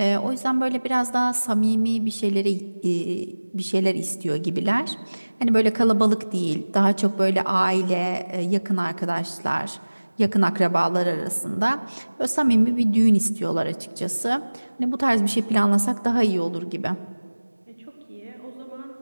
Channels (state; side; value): inverted; both; correlation -1.00